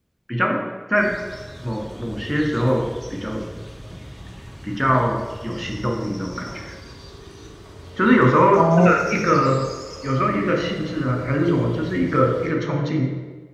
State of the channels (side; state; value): both; identical; correlation 1.00